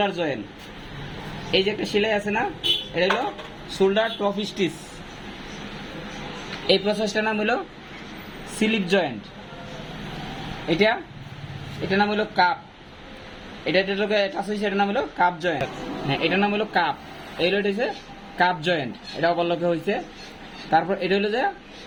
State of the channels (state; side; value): identical; both; correlation 1.00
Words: জয়েন্ট। এই যে একটা সেলাই আছে না, এটা হলো শোল্ডার টপ স্টিচ। এই প্রসেসটার নাম হলো স্লিপ জয়েন্ট। এটার নাম হলো কাপ। এটার নাম হলো কাপ জয়েন্ট। হ্যাঁ, এটার নাম হলো কাপ। এই হচ্ছে কাপ জয়েন্ট, এটা অবলকে হয়েছে। তারপর এটা হলো যে